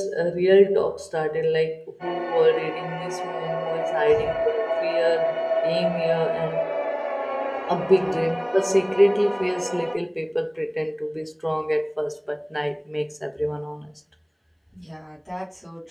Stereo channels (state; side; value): identical; both; correlation 1.00